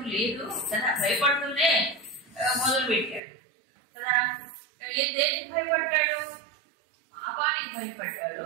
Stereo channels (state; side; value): drops out; left; at 3.2 s